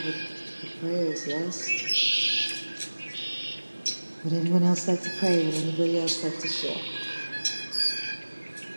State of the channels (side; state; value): both; inverted; correlation -1.00